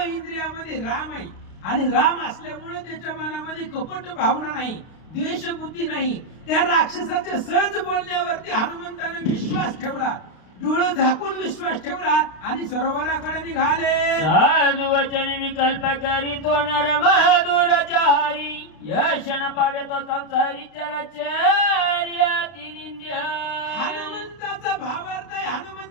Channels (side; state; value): right; late; 32 ms